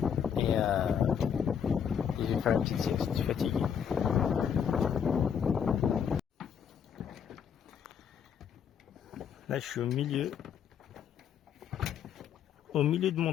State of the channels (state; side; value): quieter; right; 7.9 dB